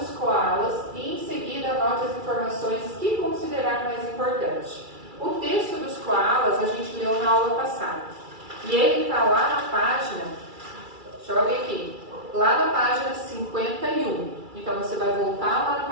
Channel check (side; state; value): left; late; 2.3 ms